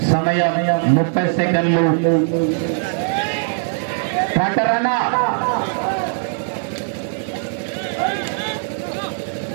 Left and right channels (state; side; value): silent; left; digital silence